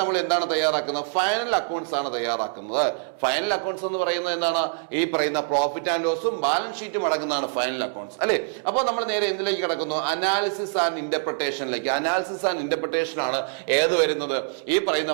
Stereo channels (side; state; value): left; silent; 62 dB below the other